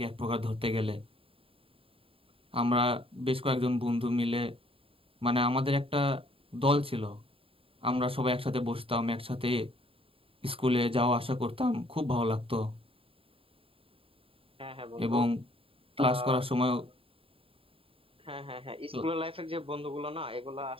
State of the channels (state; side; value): late; left; 0.27 ms